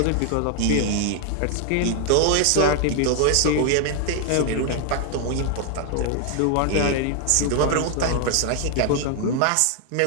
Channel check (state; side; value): different; both; correlation 0.00